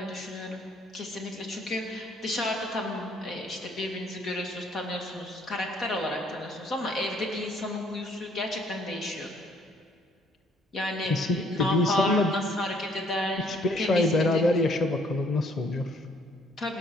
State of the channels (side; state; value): both; normal; correlation 0.64